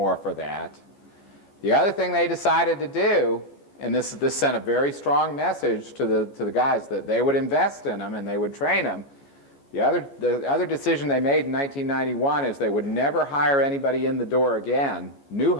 for that. The other thing they decided to do, and this sent a very strong message to the guys that they would invest in them and they would train them. The other decision they made in 1991 is they would never hire anybody in the door again, new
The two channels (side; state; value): right; late; 14 ms